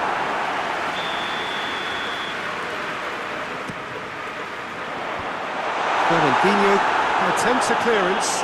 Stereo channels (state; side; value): identical; both; correlation 1.00